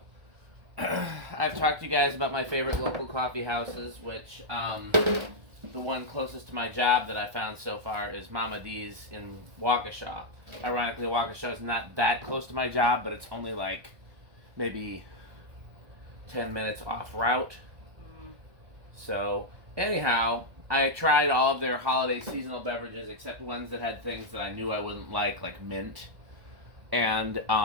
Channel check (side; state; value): left; late; 1.2 ms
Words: I've talked to you guys about my favorite local coffee houses, which the one closest to my job that I found so far is Mama D's in Waukesha. Ironically, Waukesha is not that close to my job, but it's only like maybe 10 minutes off route. So anyhow, I tried all of their holiday seasonal beverages except ones that had things that I knew I wouldn't like mint. And